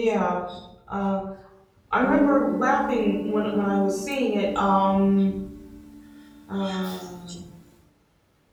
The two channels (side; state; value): both; identical; correlation 1.00